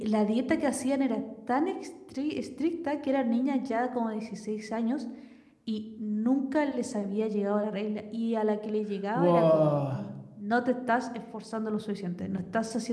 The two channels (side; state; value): both; identical; correlation 1.00